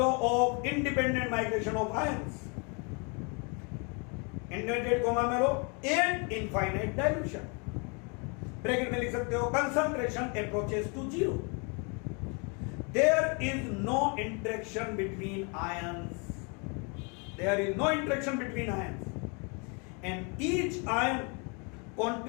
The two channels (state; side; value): quieter; right; 33.9 dB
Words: of independent migration of ions, inverted comma में लो, and infinite dilution, ब्रैकेट में लिख सकते हो concentration approaches to zero, there is no interaction between ions, there is no interaction between ions, and each ion